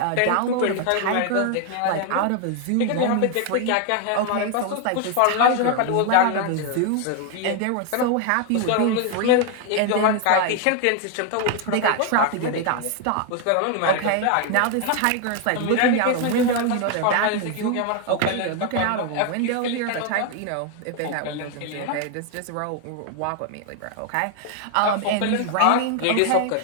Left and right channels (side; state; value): both; different; correlation 0.01